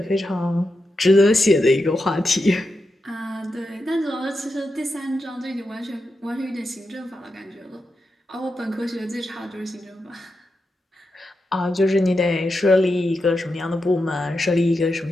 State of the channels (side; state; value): both; normal; correlation 0.88